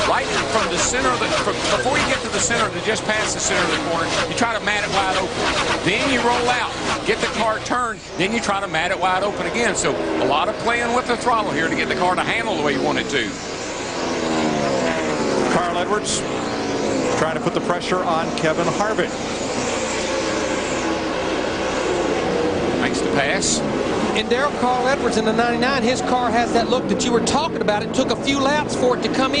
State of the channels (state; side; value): identical; both; correlation 1.00